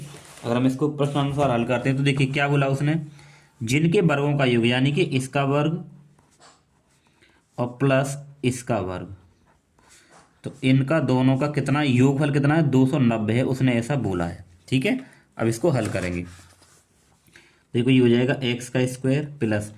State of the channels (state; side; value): identical; both; correlation 1.00